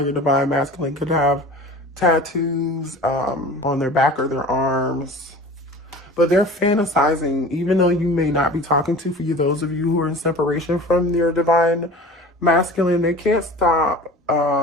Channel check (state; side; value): normal; both; correlation 0.39